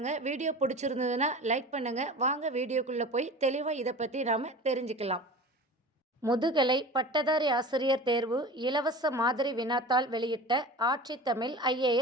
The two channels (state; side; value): normal; both; correlation 0.35